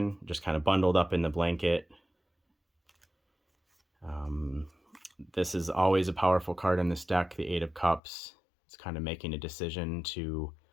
just kind of bundled up in the blanket. This is always a powerful card in this deck, the Eight of Cups. It's kind of making a decision to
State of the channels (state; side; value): drops out; right; at 8.0 s